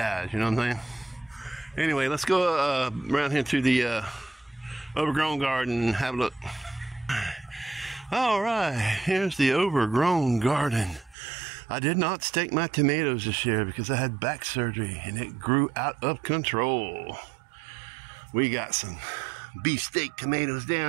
you know what I'm saying? Anyway, let's go around here to the overgrown garden and have a look. Alright, here's the overgrown garden. I did not stake my tomatoes this year because I had back surgery and it grew out of control. We got some beefsteak tomatoes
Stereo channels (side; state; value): left; drops out; at 11.2 s